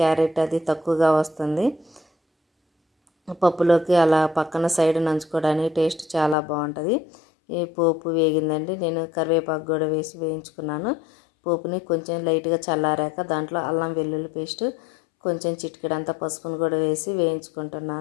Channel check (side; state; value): right; drops out; at 6.4 s